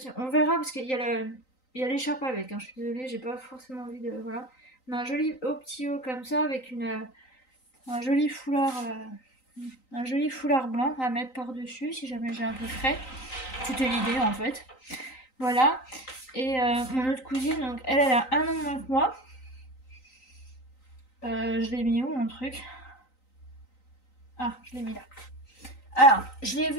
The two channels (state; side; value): late; right; 3.9 ms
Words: on verra parce qu'il y a il y a l'écharpe avec, hein, je suis désolée, j'ai pas forcément envie de. Voilà. Mais un joli haut petit haut comme ça avec un joli foulard. Un joli foulard blanc à mettre par-dessus si jamais j'ai un peu frais. C'était l'idée en fait. Voilà. Et mon autre cousine, donc elle a un an de moins que moi. Je l'ai mis où mon truc? Ah, je l'ai mis là. Alors, je l'ai